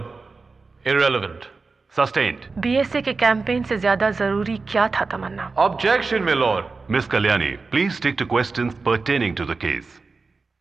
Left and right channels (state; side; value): quieter; left; 4.1 dB